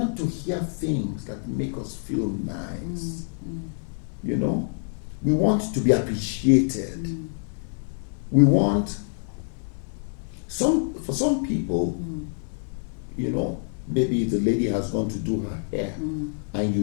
to hear things that make us feel nice? You know, we want to be appreciated. We want for some people, you know, maybe the lady has gone to do her hair and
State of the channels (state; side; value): silent; right; 55 dB below the other